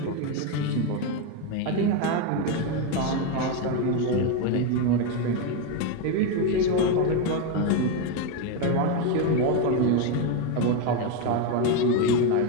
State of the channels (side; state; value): both; different; correlation 0.03